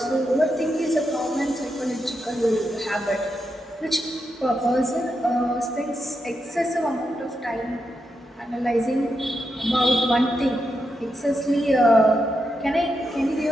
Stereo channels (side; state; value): both; normal; correlation 0.85